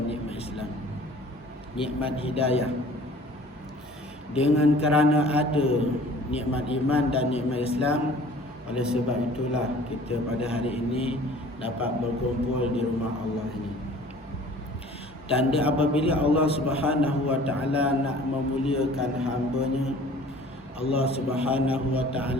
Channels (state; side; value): normal; both; correlation 0.49